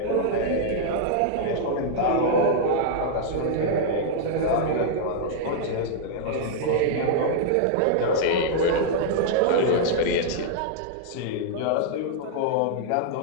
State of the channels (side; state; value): both; different; correlation -0.01